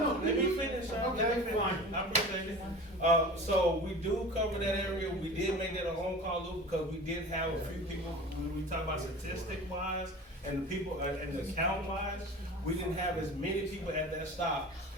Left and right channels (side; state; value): both; normal; correlation 0.37